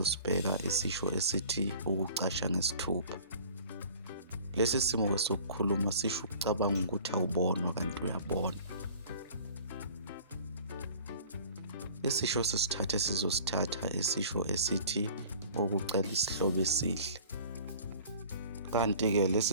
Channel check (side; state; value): both; inverted; correlation -0.46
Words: isisho esithi ukucasha ngesithupha. Lesi simo sokukhuluma sisho ukucabanga ukuthi awubonwa kanti uyabona. Isisho sesithathu sizosithatha isisho esithi ukucela isihlobo esihle. Kanti-ke